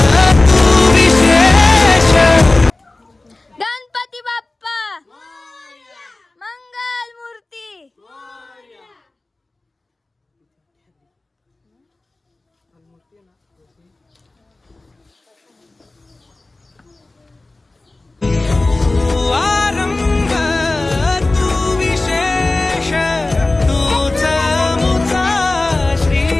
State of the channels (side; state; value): right; quieter; 3.0 dB